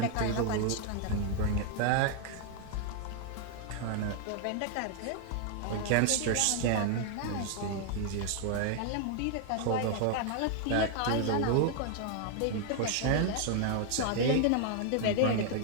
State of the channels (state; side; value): different; both; correlation 0.00